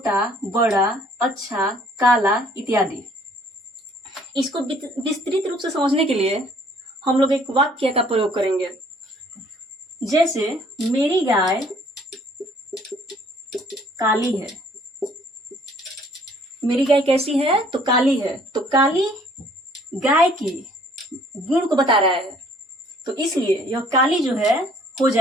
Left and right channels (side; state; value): both; normal; correlation 0.59